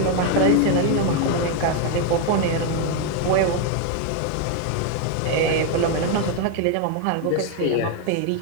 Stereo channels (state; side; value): different; both; correlation 0.01